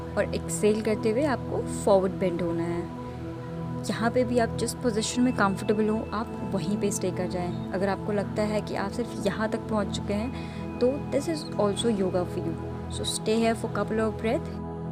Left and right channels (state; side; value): identical; both; correlation 1.00